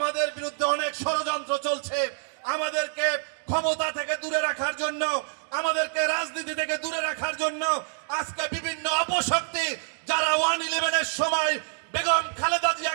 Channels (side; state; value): left; silent; 60 dB below the other